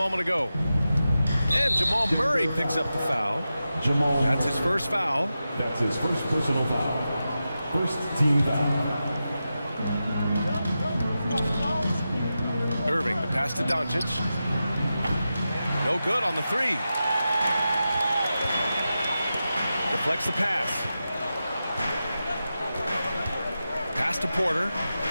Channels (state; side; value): inverted; both; correlation -0.91